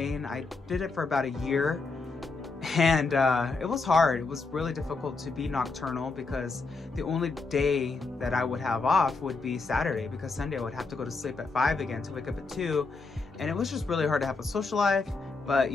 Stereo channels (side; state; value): right; quieter; 3.9 dB